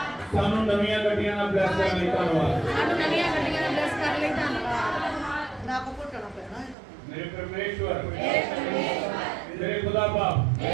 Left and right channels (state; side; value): drops out; left; at 6.8 s